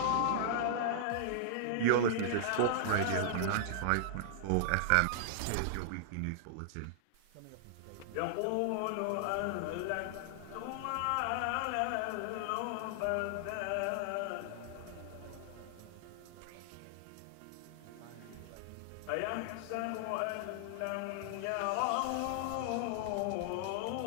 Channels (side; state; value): both; different; correlation -0.01